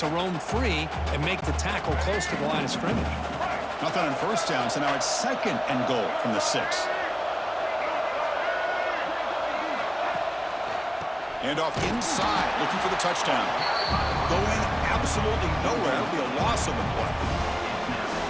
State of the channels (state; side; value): identical; both; correlation 1.00